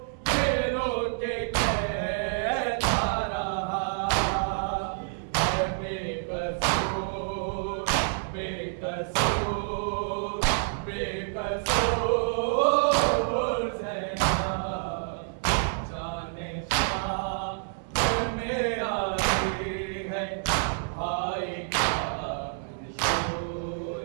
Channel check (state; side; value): silent; left; 59 dB below the other